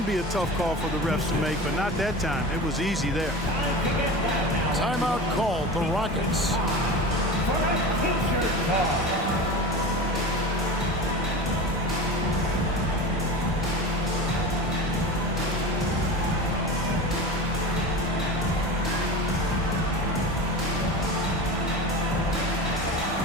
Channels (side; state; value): both; normal; correlation 0.31